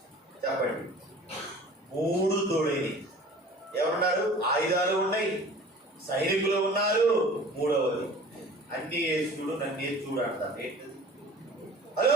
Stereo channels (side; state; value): both; normal; correlation 0.45